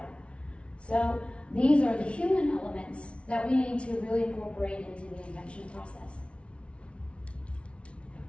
So these are the human elements that we need to really incorporate into the invention process.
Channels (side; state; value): right; late; 0.060 ms